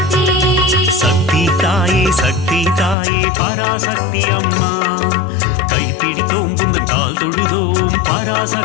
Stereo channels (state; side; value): drops out; right; at 3.0 s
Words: சக்தி தாயே, சக்தி தாயே, பராசக்தி அம்மா, கைப்பிடித்தோம் புந்தன் கால் தொழுதோம்